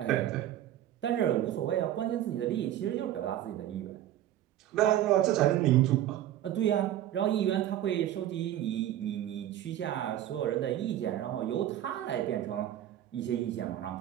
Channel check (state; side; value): quieter; left; 12.3 dB